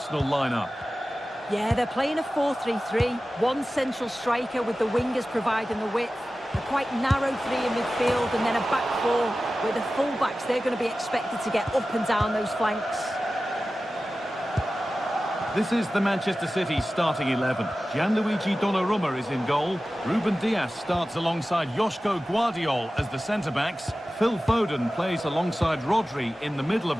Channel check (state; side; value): normal; both; correlation 0.95